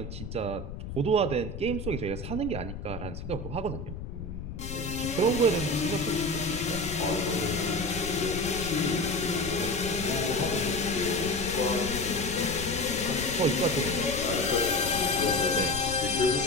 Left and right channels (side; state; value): left; noise; rumble, 8 dB below the sound